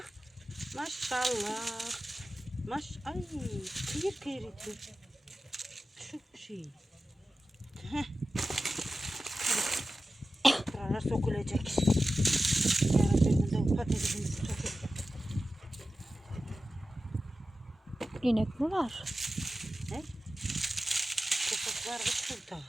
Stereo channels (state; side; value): normal; both; correlation 0.94